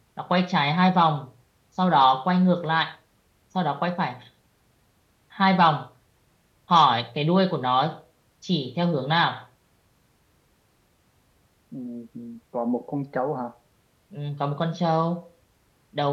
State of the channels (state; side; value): identical; both; correlation 1.00